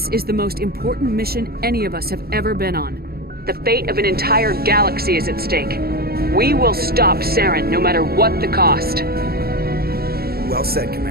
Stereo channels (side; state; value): left; late; 0.45 ms